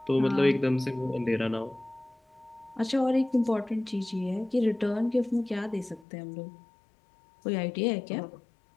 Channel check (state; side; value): drops out; right; at 6.1 s